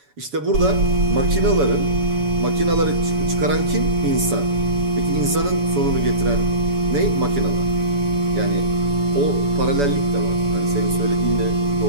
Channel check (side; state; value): left; late; 7.0 ms